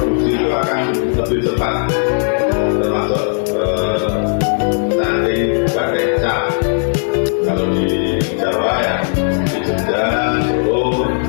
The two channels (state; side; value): silent; right; 63 dB below the other